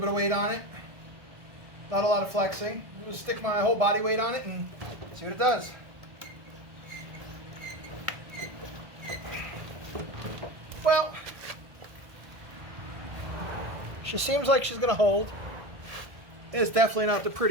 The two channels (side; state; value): left; late; 1.5 ms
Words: of weight on it, not a lot of flexing. I'm going to stick my whole body weight on it and see what it does. Well, she seems like she's going to hold. It's definitely not the